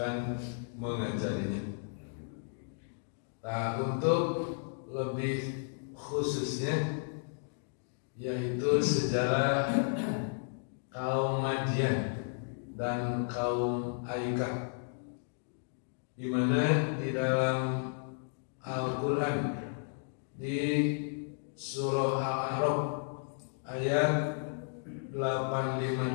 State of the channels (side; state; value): right; silent; digital silence